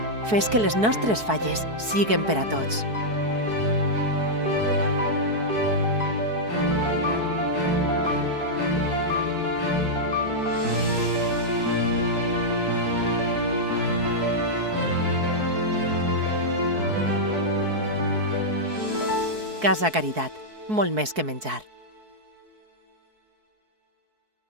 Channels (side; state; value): left; late; 4.6 ms